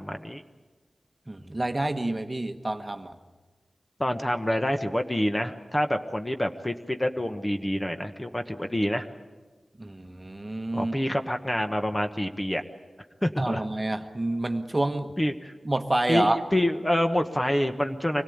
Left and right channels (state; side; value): normal; both; correlation 0.98